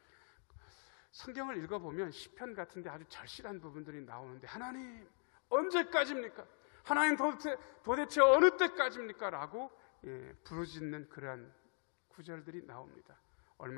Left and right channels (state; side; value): silent; right; 51 dB below the other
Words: 성경을 읽어보면 시편 같은 데 아주 절실한 부분들이 나오는데 하나님 언제까지입니까? 하나님 도대체 어느 때까지입니까? 라고 부르짖는 그러한 구절들이 나옵니다.